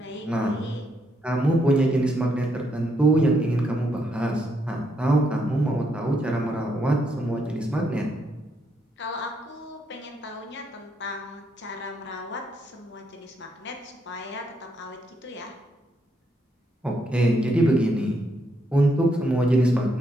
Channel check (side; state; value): both; normal; correlation 0.77